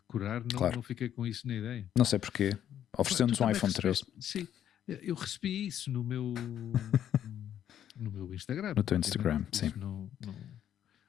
não fiquei com isso na ideia? Não sei porquê. Oferecendo-nos um iPhone 13. Sim, eu recebi isso no meu Instagram. No teu Instagram, sim.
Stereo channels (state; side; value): quieter; right; 10.3 dB